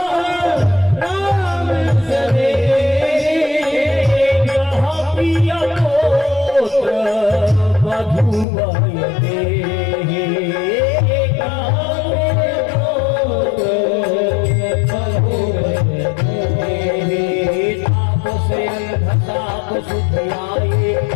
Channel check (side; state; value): right; drops out; at 8.5 s